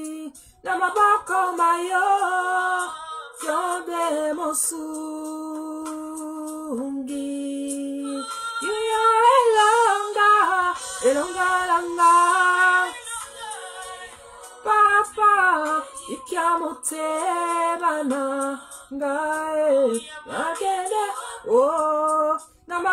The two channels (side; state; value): both; identical; correlation 1.00